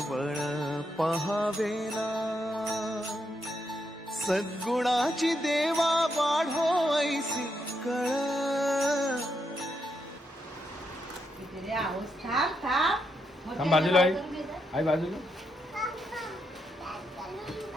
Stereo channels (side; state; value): both; normal; correlation 0.81